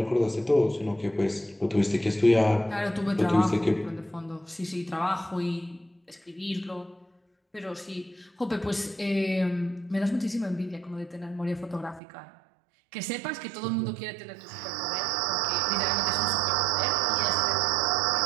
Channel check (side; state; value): left; drops out; at 12.0 s